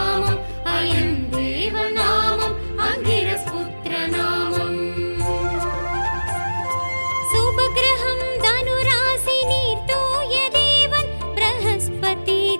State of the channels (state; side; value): inverted; both; correlation -1.00